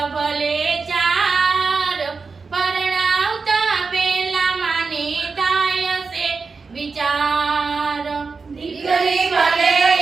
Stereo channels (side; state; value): left; quieter; 4.6 dB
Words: ભલે ચાર, પરણાવતા પેલા માને થાય છે વિચાર. દીકરી ભલે